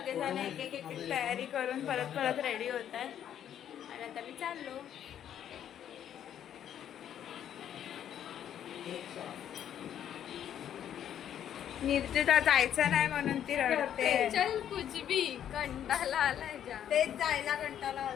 एक एक एक तयारी करून परत रेडी होत आहेत आणि आता मी चाललो. निर्जिता जायचं नाही म्हणून ती रडते. चल कुछ भी कंटाळा आलाय जा. तेच जायला कंटाळा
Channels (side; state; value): right; quieter; 10.0 dB